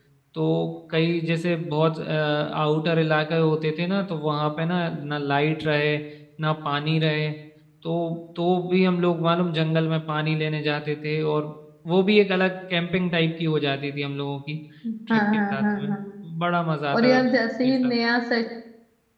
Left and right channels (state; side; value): identical; both; correlation 1.00